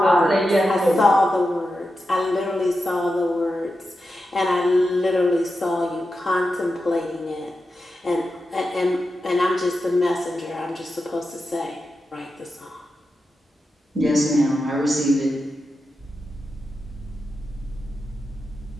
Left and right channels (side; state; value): both; normal; correlation 0.90